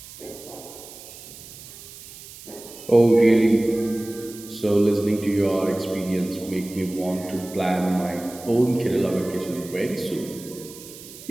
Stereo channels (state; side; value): noise; right; hiss, 16 dB below the sound